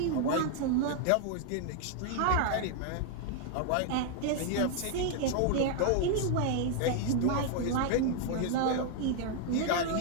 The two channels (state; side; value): different; both; correlation 0.00